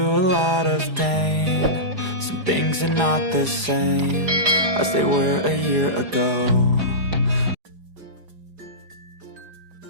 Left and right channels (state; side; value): late; left; 4.9 ms